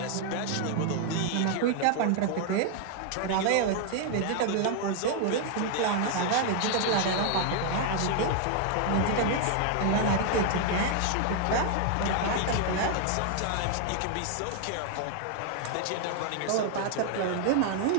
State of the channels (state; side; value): different; both; correlation 0.00